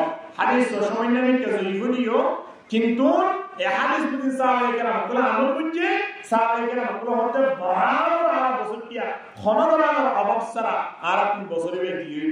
হাদিস সামান্য নিতে জয়ফুনিও কিন্তু এই হাদিস বুঝি সাহাবায়ে কেরাম কলা আমল বুঝে সাহাবায়ে কেরাম কলা হতে বরাবর আর বসটিয়া খনদরার অভাব সারা আর আপনি বছরে দিয়ে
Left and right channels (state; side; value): identical; both; correlation 1.00